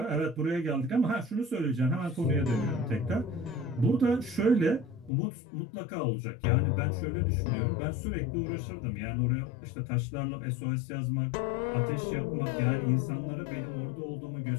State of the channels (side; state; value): right; drops out; at 5.1 s